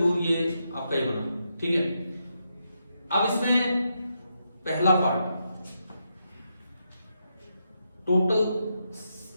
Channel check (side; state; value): both; inverted; correlation -0.83